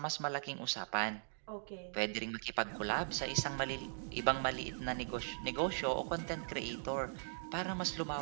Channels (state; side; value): silent; left; digital silence